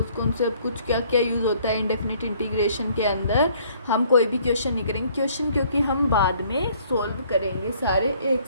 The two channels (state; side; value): inverted; both; correlation -0.61